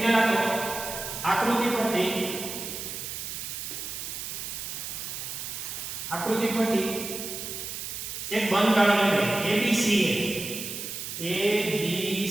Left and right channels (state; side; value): noise; right; hiss, 6 dB below the sound